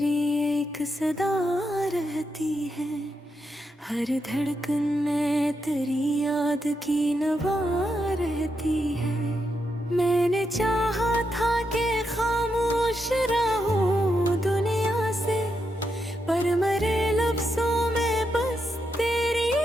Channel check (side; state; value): both; normal; correlation 0.83